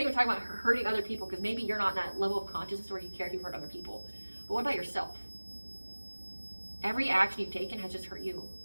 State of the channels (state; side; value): inverted; both; correlation -1.00